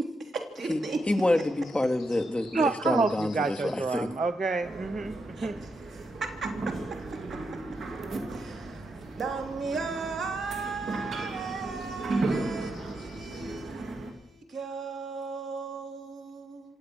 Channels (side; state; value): both; normal; correlation 0.83